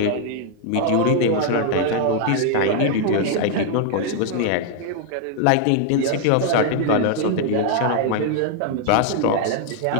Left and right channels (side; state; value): both; different; correlation 0.00